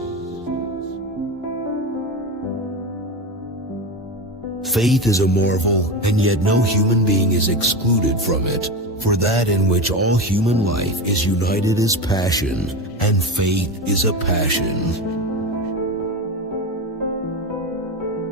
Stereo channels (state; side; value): normal; both; correlation 0.21